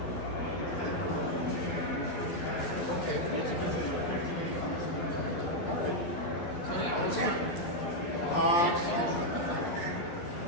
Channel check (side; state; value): right; late; 11 ms